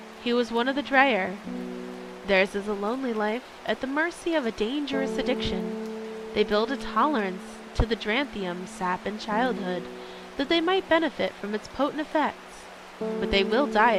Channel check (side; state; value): both; identical; correlation 1.00